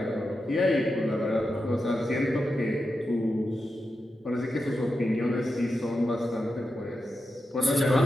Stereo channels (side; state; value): both; normal; correlation 0.89